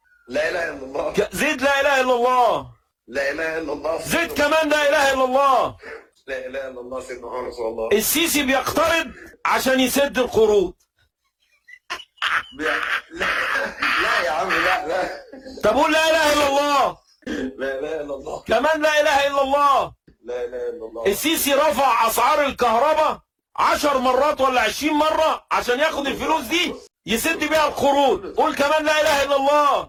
لا اله الا الله. زيد لا اله الا الله. لا اله الا الله. زيد كمان لا اله الا الله. لا اله الا الله سيدنا محمد رسول الله. السيسي بيقترض عشان يسد القروض. لا لا يا عم لا. طب قول لا اله الا الله. لا اله الا الله. كمان لا اله الا الله. لا اله الا الله. السيسي رفع اسعار الكهرباء 10 مرات ولا 20 مرة عشان ياخد الفلوس دي يسد بيها القروض. قول كمان لا اله الا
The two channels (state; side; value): identical; both; correlation 1.00